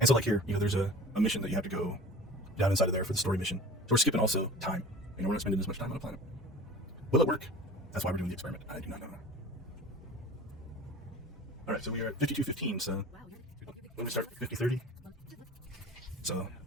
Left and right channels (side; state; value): both; normal; correlation 0.40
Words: so like here, there's a mission that you have to go down inside of there for the story mission. So we're skipping also time. We're not spending as much time on a planet. Will it work? That's why we're doing the experiment. I do not know. All right, so we are at 52:15, so when we start 50:30, so